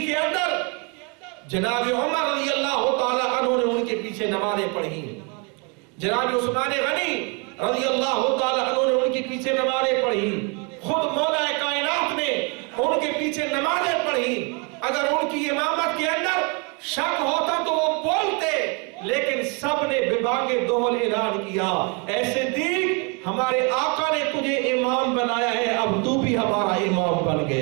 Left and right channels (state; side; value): quieter; left; 33.1 dB